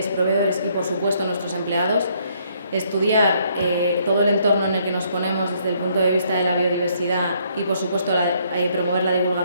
proveedores y por supuesto nuestros empleados, estudiar todo el entorno en el que nos ponemos desde el punto de vista de la biodiversidad y por supuesto promover la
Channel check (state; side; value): inverted; both; correlation -0.68